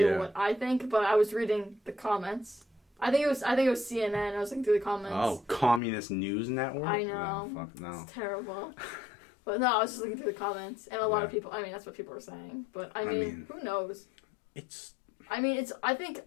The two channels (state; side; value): drops out; right; at 5.8 s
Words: what I think, but I was reading the comments. I think it was CNN. I was looking through the comments. Oh, Communist News Network? I know. Oh, fuck no. It's terrible. But no, I was just looking through the comments. And a lot of people... I mean, that's what people were saying. But, I mean who knows? I think it